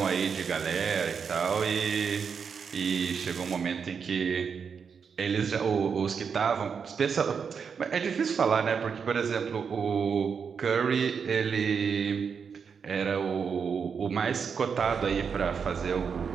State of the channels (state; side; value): quieter; left; 6.3 dB